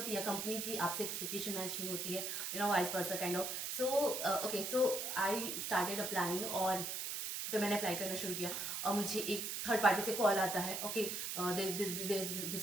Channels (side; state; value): right; noise; hiss, 3 dB below the sound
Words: या कंपनी की आपसे एक्सपेक्टेशन मैच नहीं होती है, vice versa kind of. So okay, so I started applying, और फिर मैंने अप्लाई करना शुरू किया. और मुझे एक थर्ड पार्टी से कॉल आता है, okay this